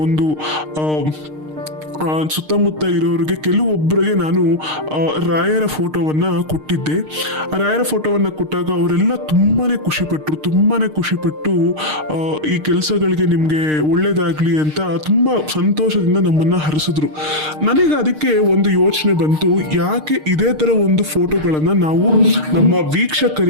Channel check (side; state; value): left; late; 6.5 ms